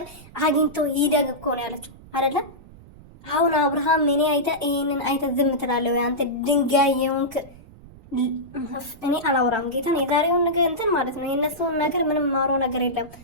አግኝቶ ይደግ እኮ ነው ያለችው አይደለ? አሁን አብርሃም እኔ ይሄንን አይተ ዝም ትላለህ ወይ አንተ ድንጋይ የሆንክ? እኔ አላወራም ጌታን የዛሬውን ነገር እንትን ማለት ነው። የነሱን ነገር ምንም ማሮ ነገር የለም።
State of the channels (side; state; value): right; noise; rumble, 21 dB below the sound